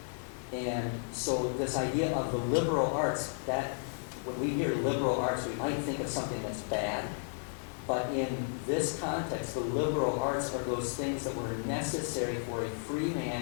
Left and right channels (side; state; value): right; silent; digital silence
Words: And so this idea of the liberal arts, that when we hear liberal arts, we might think of something that's bad. But in this context, the liberal arts are those things that were necessary for a free